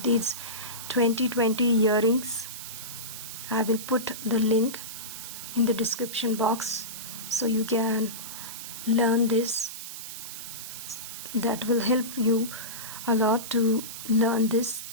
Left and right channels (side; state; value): right; noise; hiss, 9 dB below the sound